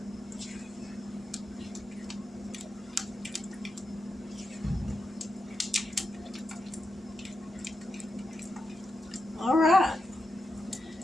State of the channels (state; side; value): normal; both; correlation 0.88